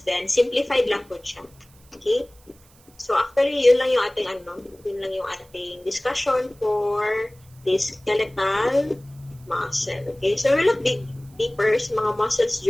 din. Simplified lang po siya. Okay? So, actually, yun lang yung ating discussion for the skeletal muscle. Okay? So, we look deeper sa mga muscles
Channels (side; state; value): right; noise; hiss, 29 dB below the sound